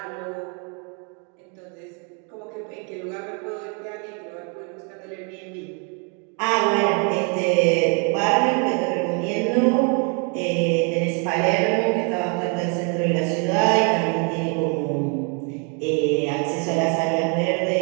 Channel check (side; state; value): left; quieter; 37.0 dB